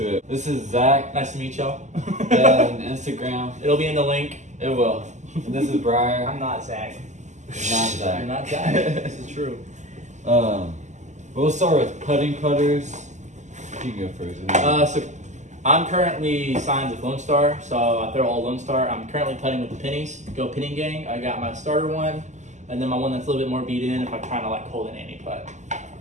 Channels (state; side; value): late; left; 0.34 ms